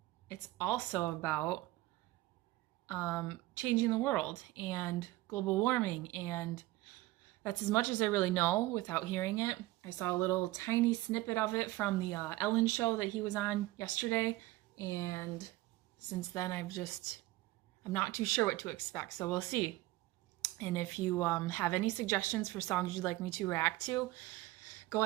it's also about changing the world and global warming, and that's as much as I really know without hearing it. I saw a little tiny snippet of it from the Ellen show that he was on yesterday, and since then I'm not too sure what to expect, so we'll see. And if you have any suggestions for songs you'd like me to react to, go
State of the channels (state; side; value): quieter; left; 18.0 dB